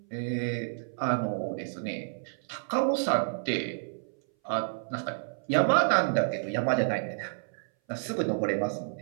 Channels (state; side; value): silent; left; 57 dB below the other